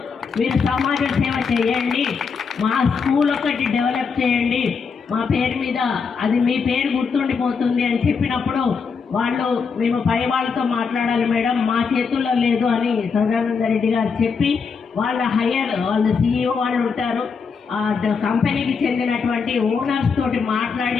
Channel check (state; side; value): quieter; right; 5.5 dB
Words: మీరు సమాజ సేవ చేయండి, మా స్కూల్ ఒకటి డెవలప్ చేయండి, మా పేరు మీద అది మీ పేరు గుర్తుండిపోతుంది అని చెప్పినప్పుడు వాళ్ళు మేము పై వాళ్ళతో మాట్లాడాలి మేడం, మా చేతుల్లో లేదు అని సదానంద రెడ్డి గారు చెప్పి వాళ్ళు CEO వాళ్ళు ఉంటారు, కంపెనీకి చెందినటువంటి ఓనర్స్ తోటి